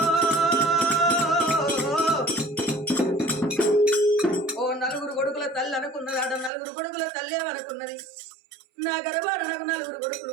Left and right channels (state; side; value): drops out; left; at 6.5 s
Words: ఓ నలుగురు కొడుకుల తల్లి అనుకున్నది ఆడ నలుగురు కొడుకుల తల్లి అనుకున్నది నా గర్భాన నాకు నలుగురు